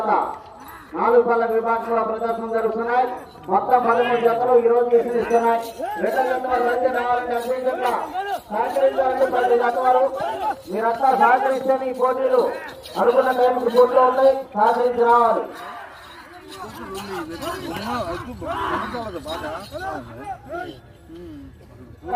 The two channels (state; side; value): identical; both; correlation 1.00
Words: 4 పళ్ళ విభాగంలో ప్రదర్శన జరుగుతున్నాయి. మొత్తం 13 జతలు ఈ రోజు ఇస్తున్నాయి. రెండో జత వారు రావాలంటే అన్ని జత సహకరించాలంటే 10 జత వారు మీరంతా సహకరిస్తే ఈ పోటీలు అనుకున్న టైంకి పోటీలో ఉంటాయి. సహకరించి రావాలి.